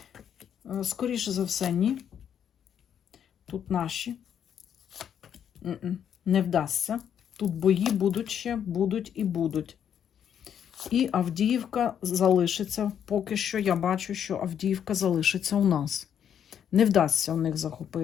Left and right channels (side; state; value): right; quieter; 8.9 dB